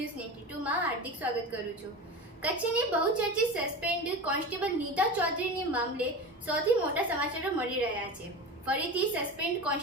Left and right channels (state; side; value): normal; both; correlation 0.28